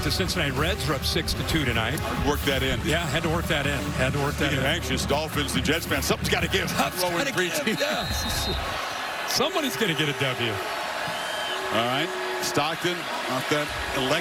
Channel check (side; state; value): both; identical; correlation 1.00